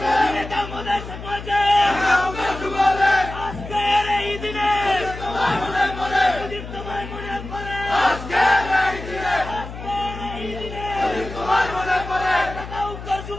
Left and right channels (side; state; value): left; noise; hum, 11 dB below the sound